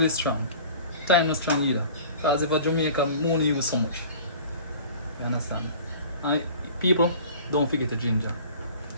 strong. Thyme not strong either. Because if a Jamaican, we only use so much. You understand? And people, don't forget the ginger.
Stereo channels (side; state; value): both; inverted; correlation -0.44